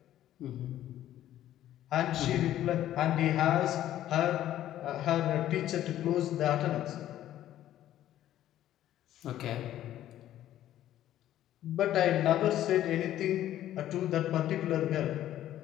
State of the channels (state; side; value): quieter; right; 12.6 dB